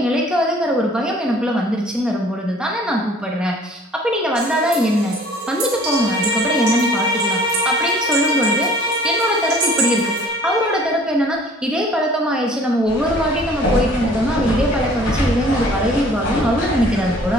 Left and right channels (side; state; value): both; normal; correlation 0.52